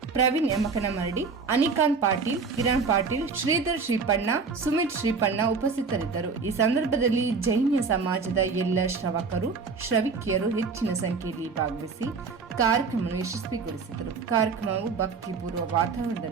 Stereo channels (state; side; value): quieter; left; 4.9 dB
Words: ಪ್ರವೀಣ್ ಯಮಕನಮರಡಿ, ಅನಿಕಾಂತ್ ಪಾಟೀಲ್, ಕಿರಣ್ ಪಾಟೀಲ್, ಶ್ರೀಧರ್ ಶ್ರೀಪಣ್ಣ, ಸುಮಿತ್ ಶ್ರೀಪಣ್ಣ ಉಪಸ್ಥಿತರಿದ್ದರು. ಈ ಸಂದರ್ಭದಲ್ಲಿ ಜೈನ ಸಮಾಜದ ಎಲ್ಲ ಶ್ರವಕರು, ಶ್ರವಿಕಿಯರು ಹೆಚ್ಚಿನ ಸಂಖ್ಯೆಯಲ್ಲಿ ಭಾಗವಹಿಸಿ ಕಾರ್ಯಕ್ರಮವನ್ನು ಯಶಸ್ವಿಗೊಳಿಸಿದರು. ಕಾರ್ಯಕ್ರಮವು ಭಕ್ತಿಪೂರ್ವ